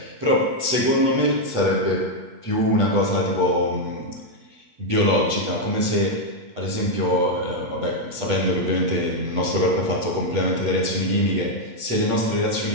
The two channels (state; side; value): late; left; 8.2 ms